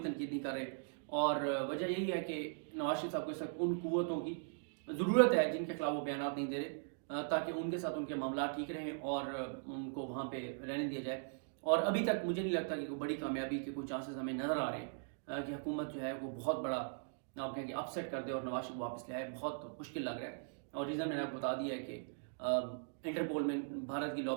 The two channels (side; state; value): left; silent; digital silence